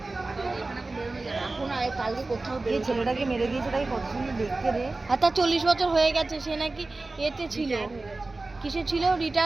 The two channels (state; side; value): quieter; left; 3.3 dB